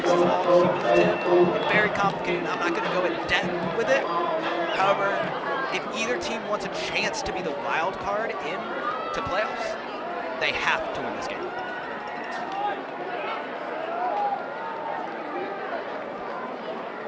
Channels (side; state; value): both; identical; correlation 1.00